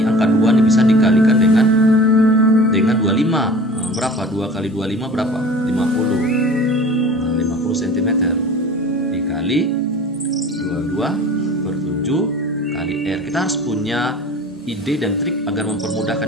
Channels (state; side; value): normal; both; correlation 0.42